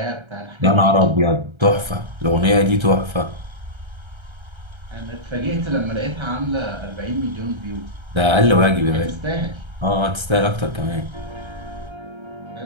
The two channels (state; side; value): late; left; 1.3 ms